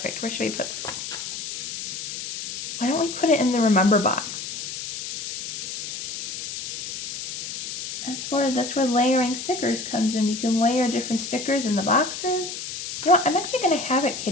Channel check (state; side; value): noise; left; hiss, 7 dB below the sound